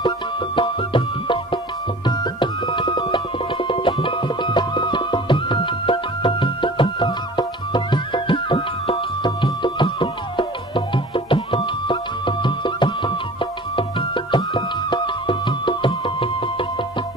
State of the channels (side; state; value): both; normal; correlation 0.43